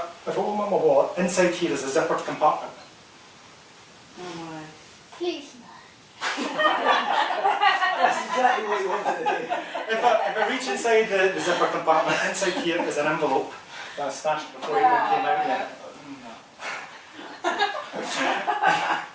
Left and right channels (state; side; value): identical; both; correlation 1.00